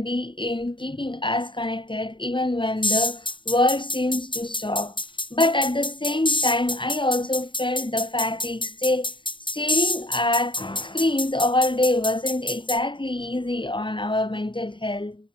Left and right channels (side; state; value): right; late; 0.24 ms